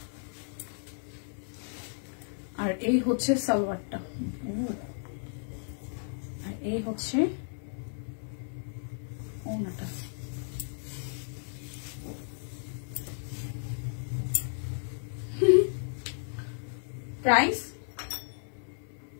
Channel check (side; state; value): right; silent; 56 dB below the other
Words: আর এই হচ্ছে সালোয়ারটা, আর এই হচ্ছে ওড়নাটা। প্রাইস